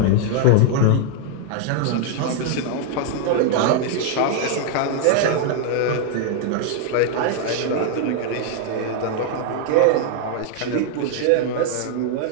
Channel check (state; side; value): different; both; correlation 0.00